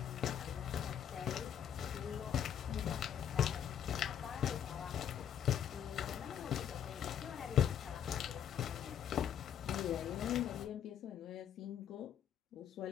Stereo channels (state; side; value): quieter; right; 9.2 dB